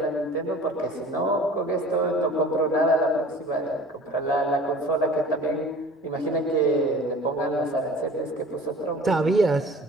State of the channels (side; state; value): both; normal; correlation 0.44